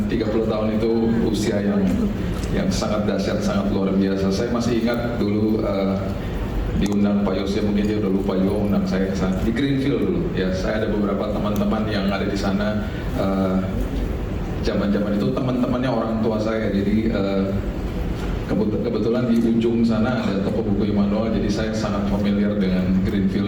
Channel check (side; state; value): both; identical; correlation 1.00